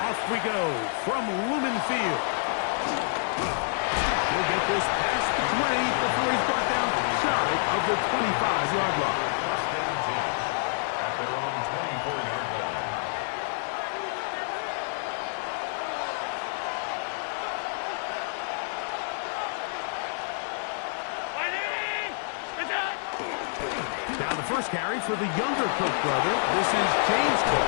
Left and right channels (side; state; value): right; silent; digital silence